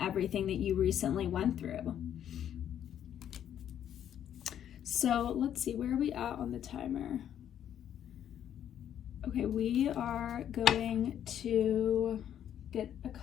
that you recently went through. So let's see, where are we at on the timer? Okay, we are going to get a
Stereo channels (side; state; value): right; quieter; 10.0 dB